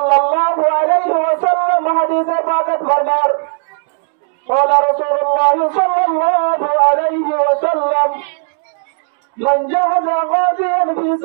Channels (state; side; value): silent; left; digital silence